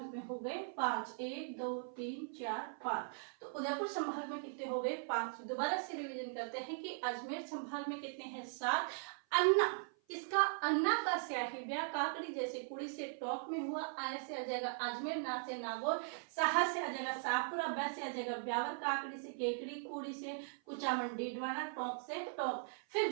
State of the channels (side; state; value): left; silent; 51 dB below the other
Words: में हो गए 5। 1 2 3 4 5। तो उदयपुर संभाग में कितने हो गए? 5। दोबारा से रिवीजन करते हैं कि अजमेर संभाग में कितने हैं? 7। अन्ना, इसका अन्ना का स्याही व्या काकड़ी जैसे कुड़ी से टॉप में हुआ। आय से आ जाएगा अजमेर, ना से नागौर, साहा से आ जाएगा शाहपुरा, बै से आ जाएगा ब्यावर, काकड़ी से केकड़ी, कुड़ी से कुचामन, डीडवाना, टॉप से टॉप।